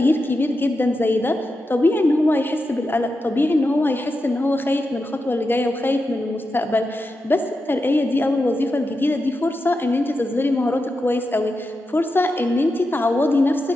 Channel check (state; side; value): normal; both; correlation 0.89